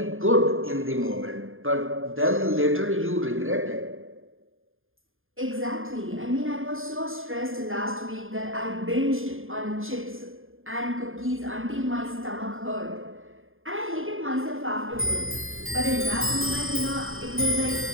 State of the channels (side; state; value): left; late; 0.59 ms